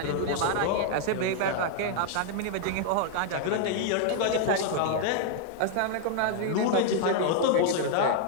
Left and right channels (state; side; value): different; both; correlation 0.00